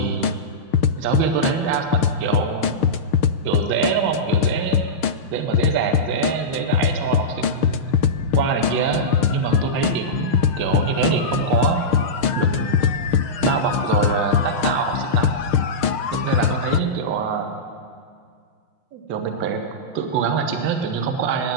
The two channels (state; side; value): late; right; 6.5 ms